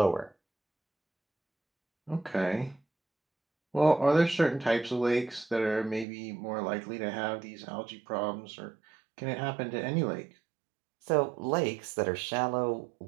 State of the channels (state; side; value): drops out; left; at 6.1 s